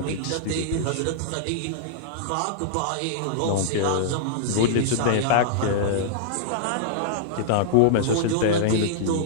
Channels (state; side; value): different; both; correlation -0.02